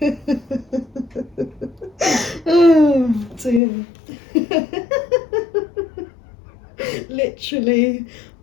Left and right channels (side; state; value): right; drops out; at 3.6 s